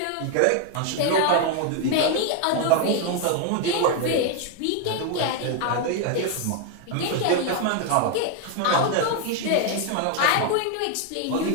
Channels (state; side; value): different; both; correlation 0.01